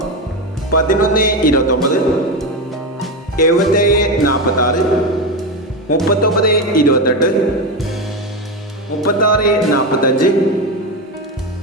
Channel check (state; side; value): normal; both; correlation 0.15